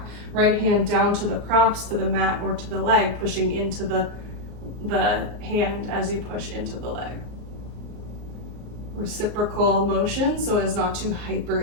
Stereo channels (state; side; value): late; left; 34 ms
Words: Right hand down to the props, to the mat, or to the leg, pushing into the hand as you push into the leg. Reciprocal motion so as not to